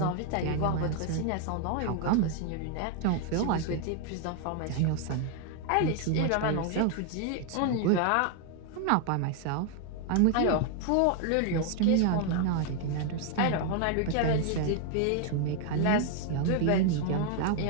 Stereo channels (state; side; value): different; both; correlation 0.00